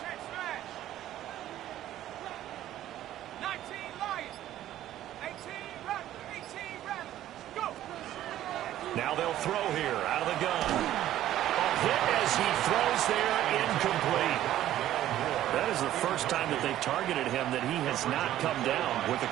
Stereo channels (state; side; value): quieter; left; 13.0 dB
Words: check smash. 19 Lions. 18 Rattler, 18 Rattler. Go. Now they'll throw here out of the gun. Hit as he throws there, incomplete. That is the first time that they've targeted him that he has not come down with a